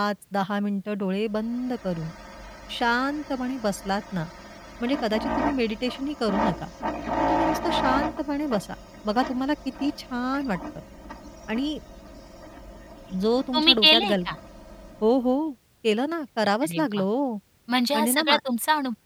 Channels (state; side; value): identical; both; correlation 1.00